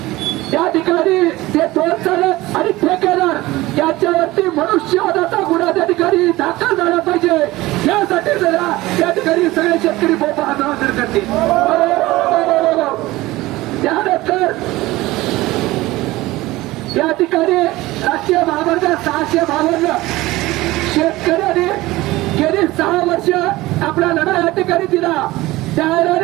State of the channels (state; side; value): quieter; left; 18.8 dB